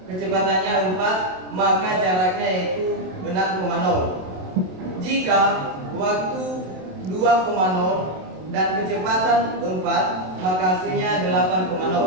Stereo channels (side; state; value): left; late; 27 ms